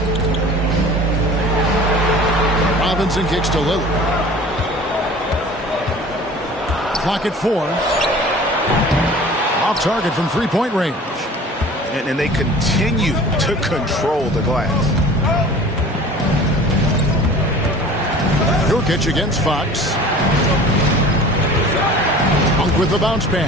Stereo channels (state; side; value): normal; both; correlation 0.43